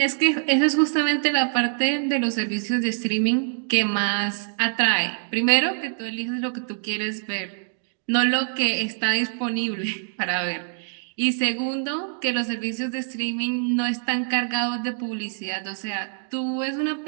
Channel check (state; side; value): silent; left; digital silence